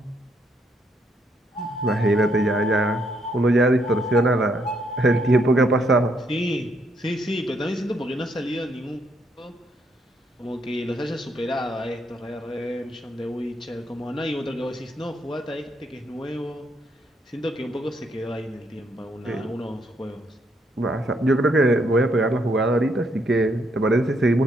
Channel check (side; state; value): both; normal; correlation 0.73